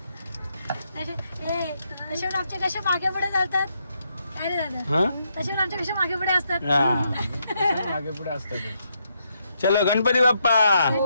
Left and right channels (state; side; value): inverted; both; correlation -0.78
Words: आमचे कसे मागे पुढे जातात काय रे दादा. तसे आमचे कसे मागे पुढे असतात. मागे पुढे असतात. चलो गणपती बाप्पा.